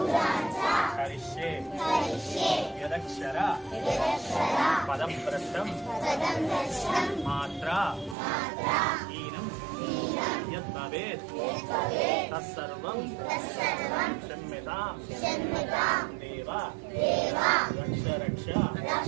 కరిష్యే యదక్షర పదభ్రష్టం మాత్రా హీనం యద్భవేత్ తత్సర్వం క్షమ్యతాం దేవ రక్ష రక్ష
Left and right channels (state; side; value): drops out; left; at 8.2 s